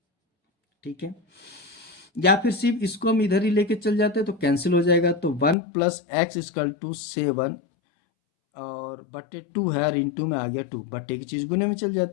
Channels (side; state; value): right; drops out; at 5.6 s